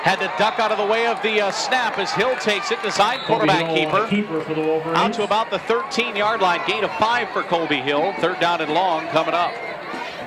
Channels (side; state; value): both; identical; correlation 1.00